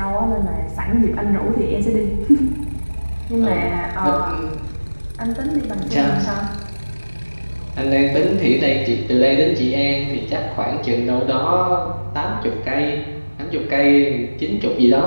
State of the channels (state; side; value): inverted; both; correlation -1.00